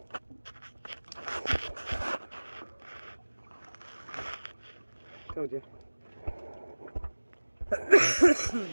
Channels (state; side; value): inverted; both; correlation -1.00